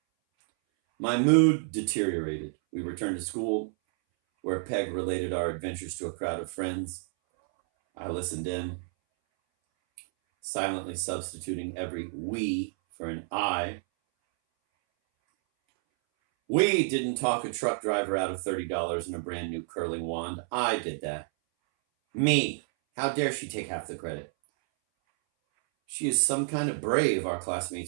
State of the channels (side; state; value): left; silent; 58 dB below the other